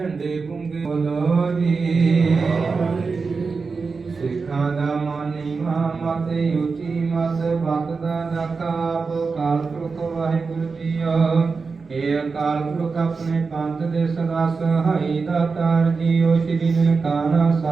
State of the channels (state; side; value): quieter; left; 4.6 dB